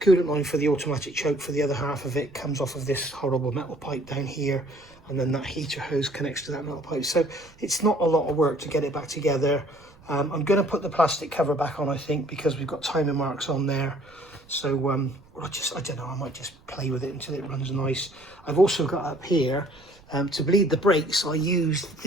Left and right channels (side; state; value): right; noise; rumble, 26 dB below the sound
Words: Coolant line for the automatic choke for the other half of it comes off of this horrible metal pipe down here, and then that heater hose connects to that metal pipe. So it's not a lot of work to get it back together. I'm going to put the plastic cover back on, I think, because we've got timing marks on there. So I don't know, I might just play with it until it runs nice. I've also got up here, to bleed the brakes, I used